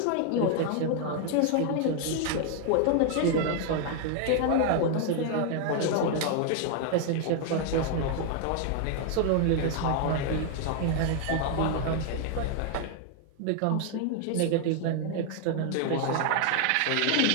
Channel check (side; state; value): both; different; correlation 0.00